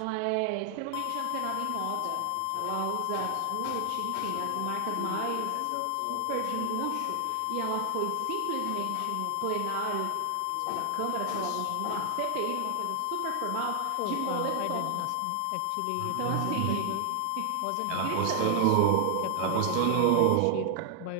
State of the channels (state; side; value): different; both; correlation 0.00